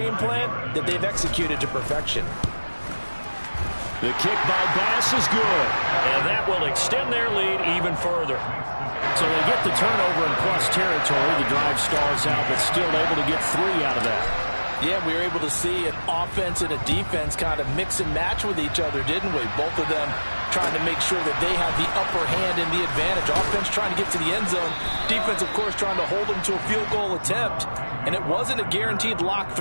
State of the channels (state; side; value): inverted; both; correlation -1.00